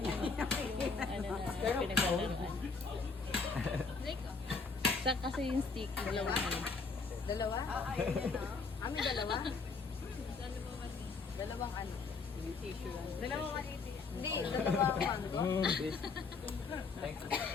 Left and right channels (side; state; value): right; quieter; 4.5 dB